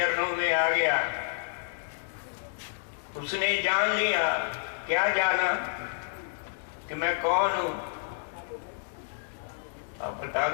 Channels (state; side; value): silent; right; 58 dB below the other